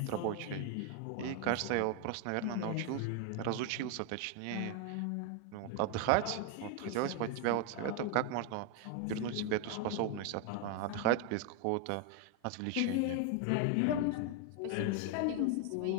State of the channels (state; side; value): different; both; correlation 0.01